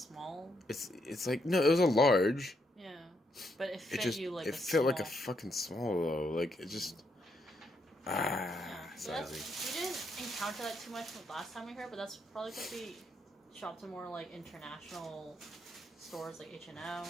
it's like no, it was a large. Yeah, but it fit It just you like it a fit like a small. fucking small though. Like it just So we didn't encounter that too much last time we were here, but that's probably because we shopped at more like international stores like H&M,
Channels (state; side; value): normal; both; correlation 0.77